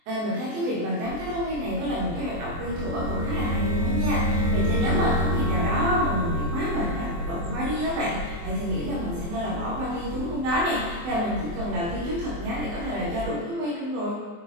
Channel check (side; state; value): left; late; 24 ms